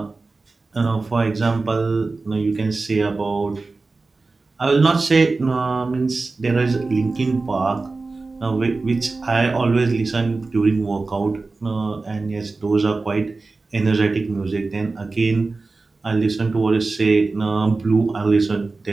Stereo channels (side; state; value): left; quieter; 3.7 dB